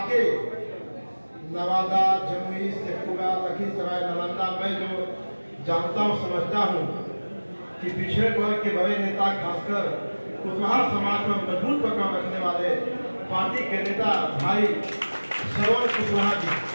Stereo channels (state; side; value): inverted; both; correlation -1.00